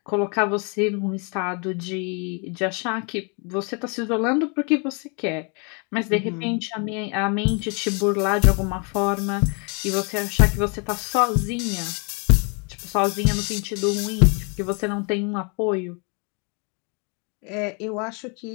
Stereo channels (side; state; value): right; quieter; 35.4 dB